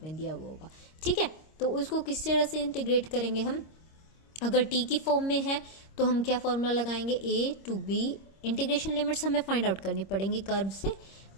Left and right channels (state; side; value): late; right; 26 ms